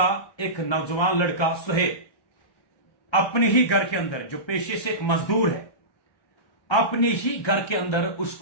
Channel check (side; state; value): right; late; 1.3 ms